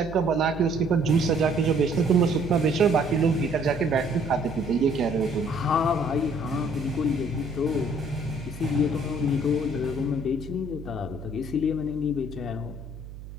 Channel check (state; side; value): noise; right; hum, 14 dB below the sound